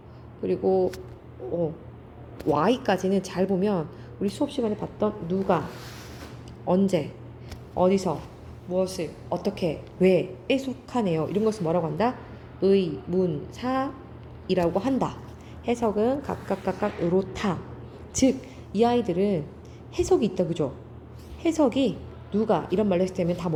그리고 Y까지는 잘 보면 우리 수업 시간에 봤던 누가, 언제, 어디서, 무엇을, 어떻게, 왜에 속하네요. 이런 것을 뭐라고 한다? 의, 문, 사이라고 한다. 해석은 각각 요렇다. 즉, 이 아이들은 해석이 있다, 그죠? 해석이 누가 이런 말로 했을 때면 다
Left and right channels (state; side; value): identical; both; correlation 1.00